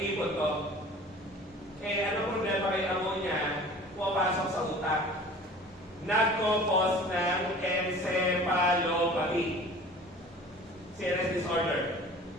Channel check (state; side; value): normal; both; correlation 0.44